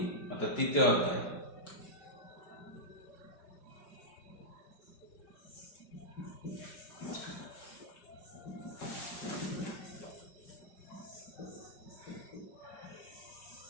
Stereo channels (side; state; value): right; late; 5.0 ms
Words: অর্থাৎ তৃতীয় অধ্যায়।